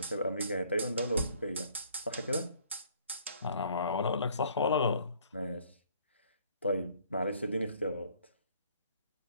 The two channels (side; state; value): both; inverted; correlation -0.60